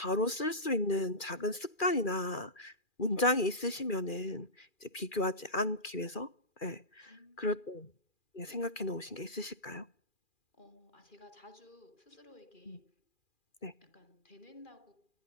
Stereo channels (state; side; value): late; right; 2.4 ms